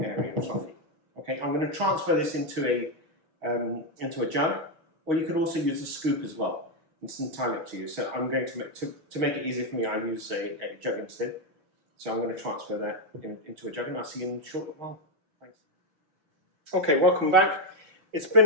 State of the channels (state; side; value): late; left; 6.3 ms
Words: airy and fluffy. Okay, I'm going to transfer this into a jug. Or you could also use a scoop as well. It's entirely up to you. So I'm going to make it easier for me, I use a jug instead. So I'm going to transfer that into a jug, and I'll see you in a short while. Thanks. Okay, welcome back. It's